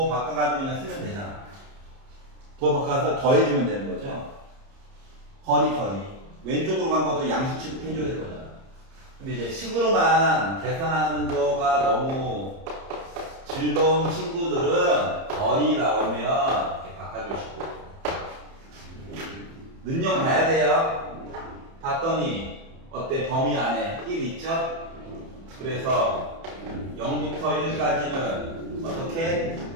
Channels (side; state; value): left; late; 30 ms